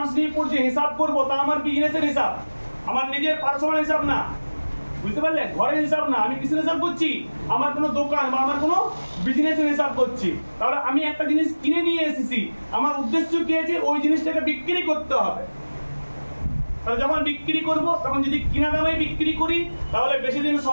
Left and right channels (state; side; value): inverted; both; correlation -1.00